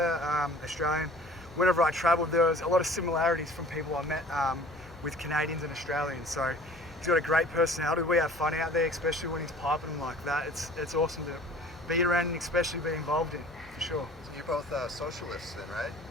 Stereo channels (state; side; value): normal; both; correlation 0.47